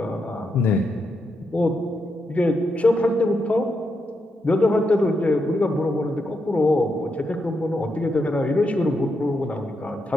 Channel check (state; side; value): normal; both; correlation 0.83